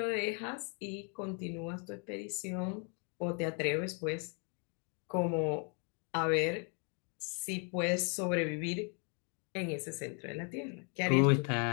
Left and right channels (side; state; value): right; quieter; 37.7 dB